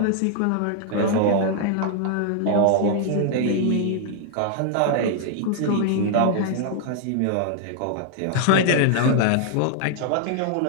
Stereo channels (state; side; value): different; both; correlation 0.00